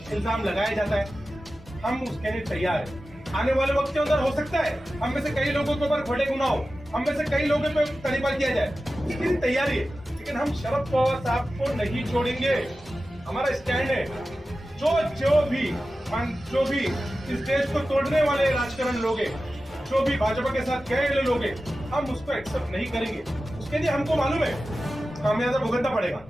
लगाया जाता है, हम उसके लिए तैयार हैं। आने वाले वक्त के अंदर हो सकता है हम में से कई लोगों के ऊपर बड़े गुनाह हो, हम में से कई लोगों पे तरीका किया जाए, इसकी लिए तैयारी है। लेकिन हम शरद पवार साहब को नहीं छोड़ेंगे। हमारा स्टैंड है जो भी इस देश को तोड़ने वाले राजकारण लोग हैं, जो भी भाजपा के साथ गए लोग हैं, हम उसको एक्सेप्ट नहीं करेंगे। उसके लिए हमको मालूम है खामियाजा भुगतना पड़ेगा,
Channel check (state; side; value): normal; both; correlation 0.94